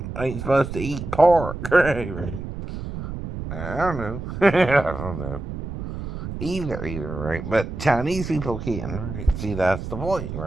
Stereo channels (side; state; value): right; noise; rumble, 7 dB below the sound